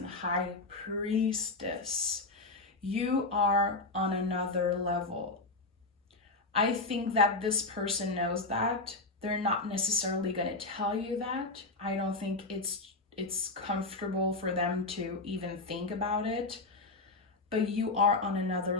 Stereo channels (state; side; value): quieter; right; 3.3 dB